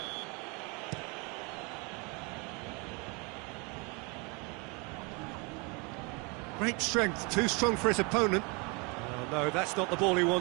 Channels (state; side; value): quieter; left; 30.2 dB